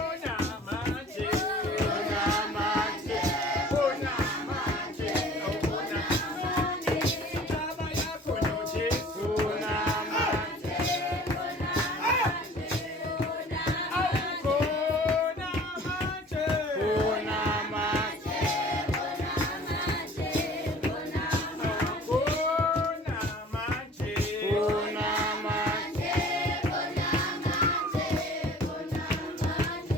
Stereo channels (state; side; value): normal; both; correlation 0.47